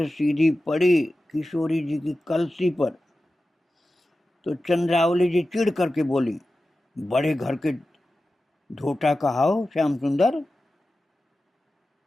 सीधी पड़ी किशोरी जी की कलसी पर, तो चंद्रावली जी चिढ़ करके बोली, बड़े घर के ढोटा कहाओ श्याम सुंदर,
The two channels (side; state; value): both; normal; correlation 0.94